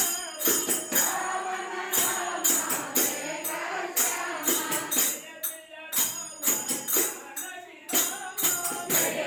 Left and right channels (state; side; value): identical; both; correlation 1.00